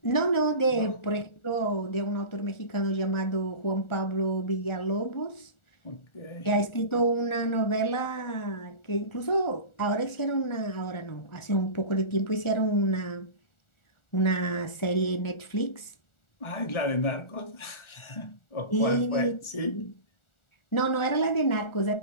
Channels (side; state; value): right; late; 1.4 ms